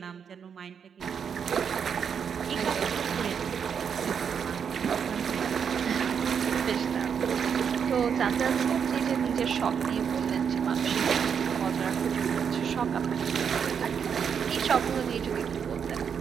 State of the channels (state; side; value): quieter; left; 7.2 dB